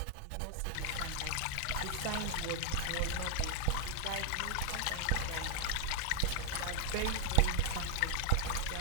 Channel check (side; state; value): both; different; correlation 0.00